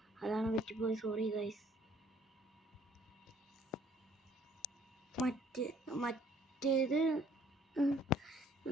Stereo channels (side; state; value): both; normal; correlation 0.61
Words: അതാണ് പറ്റിപ്പോയി. Sorry guys. മറ്റേത്